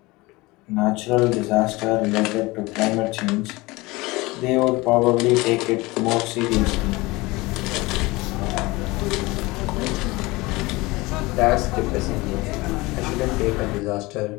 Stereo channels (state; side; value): quieter; right; 22.2 dB